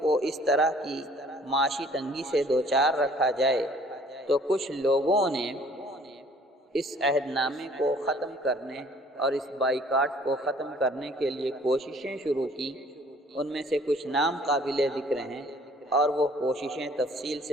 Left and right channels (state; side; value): normal; both; correlation 0.56